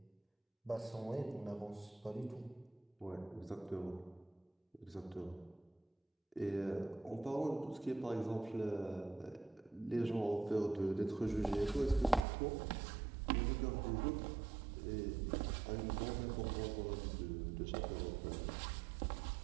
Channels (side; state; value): left; drops out; at 12.2 s